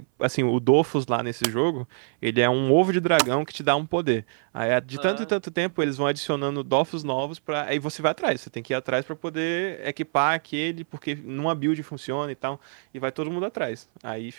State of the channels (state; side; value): silent; left; 58 dB below the other